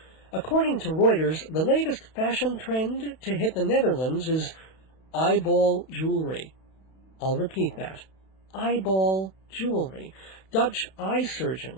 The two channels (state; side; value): late; right; 31 ms